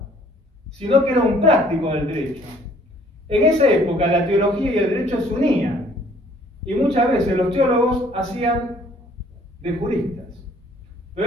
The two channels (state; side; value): normal; both; correlation 0.59